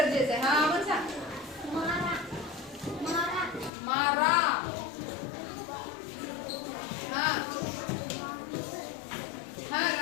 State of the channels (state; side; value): drops out; right; at 3.7 s